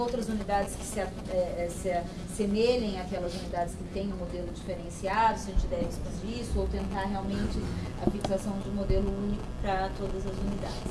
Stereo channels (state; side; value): identical; both; correlation 1.00